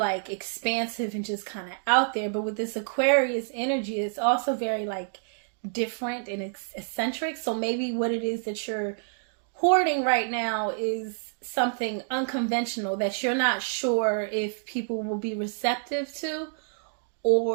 expansive and just kind of out there. But with this Aquarius energy, it's also very like different and eccentric. So maybe what it is that you're hoarding right now is something unconventional that you're not sure if people will be receptive to,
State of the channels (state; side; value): silent; left; 59 dB below the other